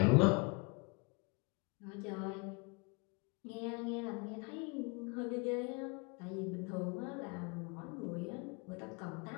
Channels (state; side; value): quieter; right; 30.6 dB